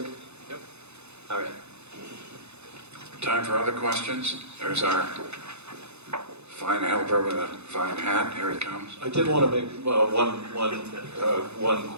Yep. All right. Time for other questions? There's our fine helper with a fine hat. Here he comes. I did want to make one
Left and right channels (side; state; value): left; late; 0.81 ms